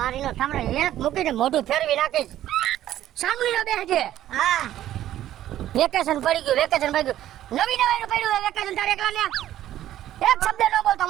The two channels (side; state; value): left; quieter; 12.6 dB